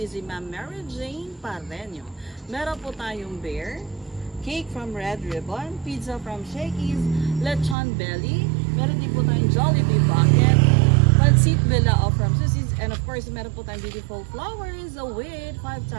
si Ma'am Mary Jane Parreño. Meron po tayong bear, cake from Red Ribbon, pizza from Shakey's, lechon belly, meron din po tayong Jollibee bucket, pancit bilao from Susie's, and of course, meron po tayong beautiful flowers with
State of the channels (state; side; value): drops out; left; at 7.8 s